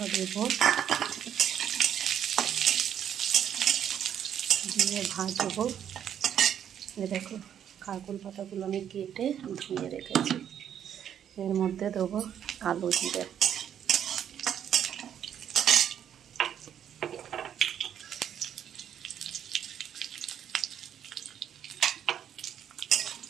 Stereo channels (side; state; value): left; quieter; 9.4 dB